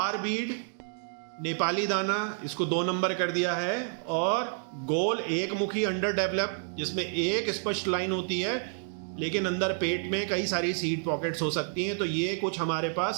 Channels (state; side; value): silent; left; 58 dB below the other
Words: बीड नेपाली दाना, इसको 2 नंबर कर दिया है। और गोल एक मुखी अंडर डेवलप, जिसमें एक स्पष्ट लाइन होती है, लेकिन अंदर पेट में कई सारी सीड पॉकेट्स हो सकती हैं। तो ये कुछ हमारे